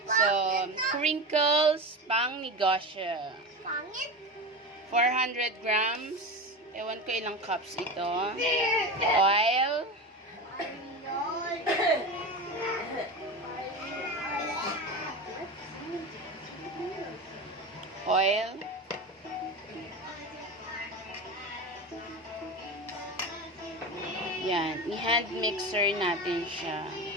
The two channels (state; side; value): normal; both; correlation 0.25